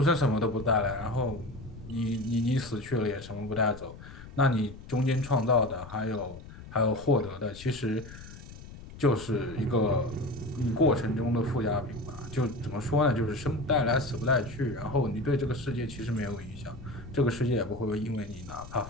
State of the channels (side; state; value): left; noise; rumble, 15 dB below the sound